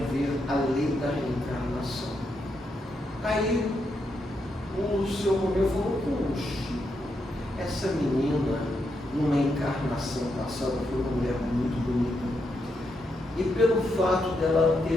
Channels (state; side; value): normal; both; correlation 0.82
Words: ver a lei da reencarnação. Aí o seu Romeu falou: puxa, essa menina, numa encarnação passada, foi uma mulher muito bonita. E pelo fato dela